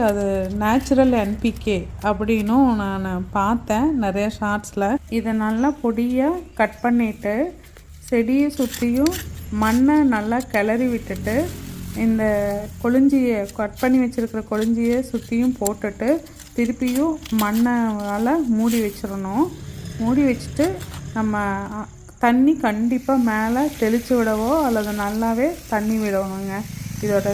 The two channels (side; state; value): both; identical; correlation 1.00